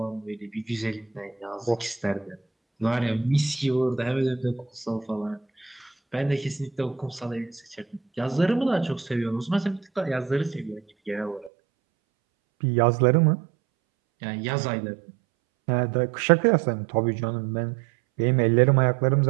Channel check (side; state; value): left; drops out; at 11.5 s